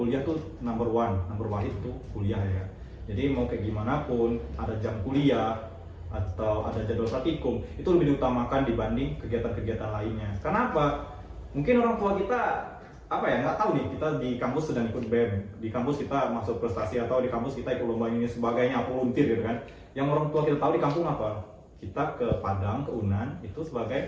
tuh number one itu kuliah ya kan. Jadi mau kayak gimana pun ada jam kuliah atau ada jadwal praktikum itu lebih diutamakan dibanding kegiatan-kegiatan lainnya. Karena apa? Mungkin orang tua kita nggak tahu nih, kita di kampus sedang ikut BEM, di kampus kita masuk prestasi atau di kampus kita ikut lomba ini sebagainya, volunteer gitu kan. Yang orang tua kita tahu di kampung apa? Kita ke Padang, ke Unan itu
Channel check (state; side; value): identical; both; correlation 1.00